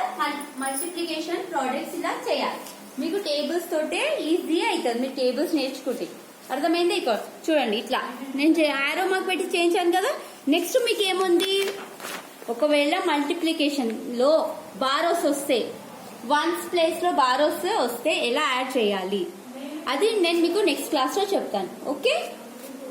మల్టిప్లికేషన్ ప్రోడక్ట్స్ ఇలా చేయాలి మీకు టేబుల్స్ తోటే ఈజీ అవుతుంది మీరు టేబుల్స్ నేర్చుకుంటే అర్థమైంది ఇక్కడ చూడండి ఇట్లా నేను ఆరో మార్క్ పెట్టి చేయించాను కదా నెక్స్ట్ మీకు ఏముంది ఒకవేళ మల్టిప్లికేషన్ లో బారోస్ వస్తే వన్స్ ప్లేస్ లో బారోస్ వస్తే ఎలా యాడ్ చేయాలి అది నేను మీకు నెక్స్ట్ క్లాస్ లో చెప్తాను ఓకే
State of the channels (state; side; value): identical; both; correlation 1.00